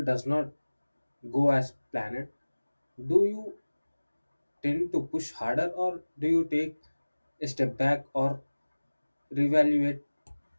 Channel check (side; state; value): both; inverted; correlation -1.00